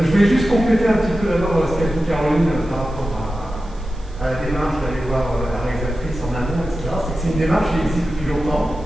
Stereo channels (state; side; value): noise; right; hiss, 29 dB below the sound